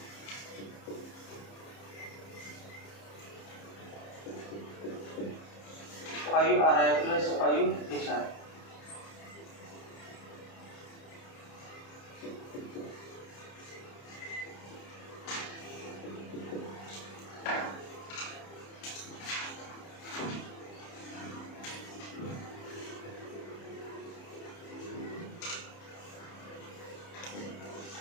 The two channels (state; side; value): late; right; 30 ms